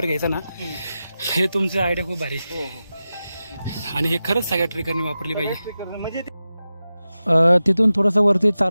घ्यायचा ना, हे तुमचं आयडिया खूप भारी. आणि हे खरंच सगळ्या ट्रेकरनी वापरली पाहिजे. म्हणजे तिथून थोडंसं वरती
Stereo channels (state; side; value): inverted; both; correlation -0.93